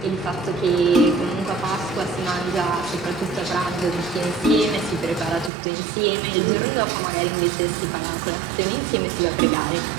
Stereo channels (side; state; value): left; drops out; at 5.5 s